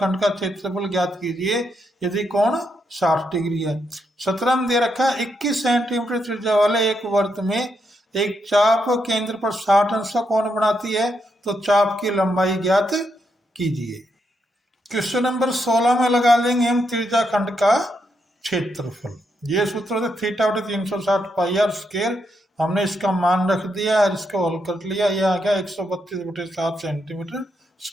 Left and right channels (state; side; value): normal; both; correlation 0.80